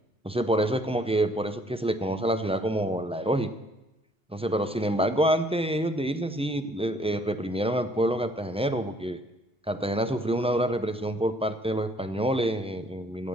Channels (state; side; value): normal; both; correlation 0.62